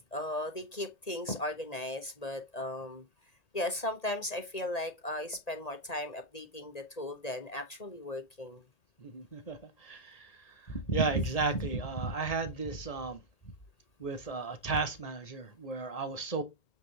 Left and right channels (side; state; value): right; late; 1.8 ms